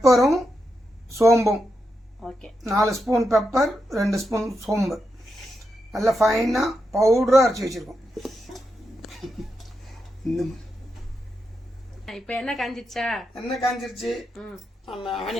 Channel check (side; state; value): both; normal; correlation 0.86